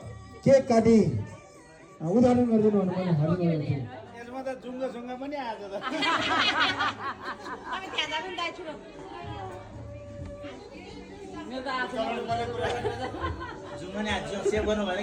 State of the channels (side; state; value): both; identical; correlation 1.00